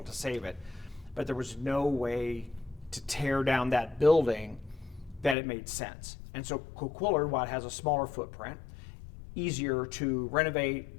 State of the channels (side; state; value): right; drops out; at 5.4 s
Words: to save it, but there was no way to tear down that building that it made sense. And so Coquillard, while it has a smaller footprint, easier to renovate,